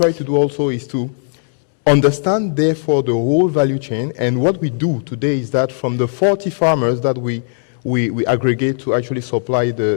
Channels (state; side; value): silent; right; 64 dB below the other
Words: to do also is to understand, therefore, the whole value chain. And what we do today is that from the 40 farmers that we aggregate to actually supply